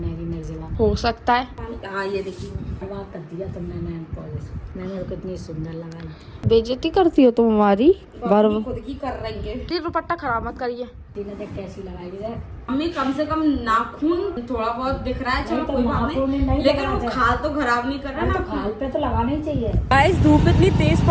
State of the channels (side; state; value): both; identical; correlation 1.00